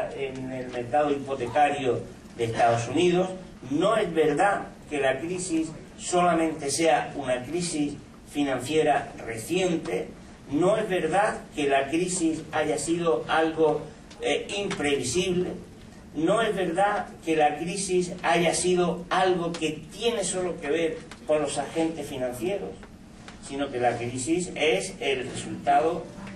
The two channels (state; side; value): identical; both; correlation 1.00